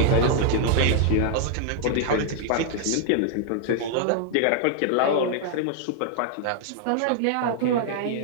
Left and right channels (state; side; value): different; both; correlation 0.00